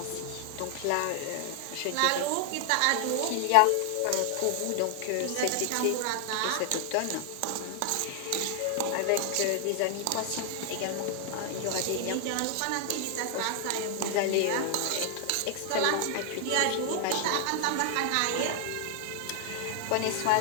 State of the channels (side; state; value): both; different; correlation 0.00